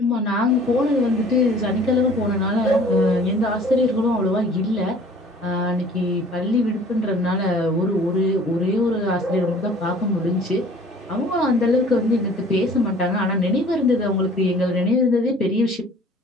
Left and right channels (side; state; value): both; normal; correlation 0.51